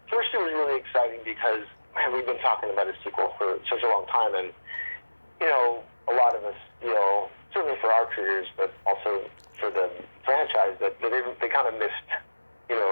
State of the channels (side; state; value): both; inverted; correlation -1.00